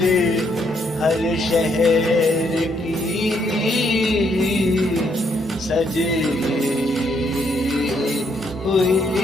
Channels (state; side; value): normal; both; correlation 0.72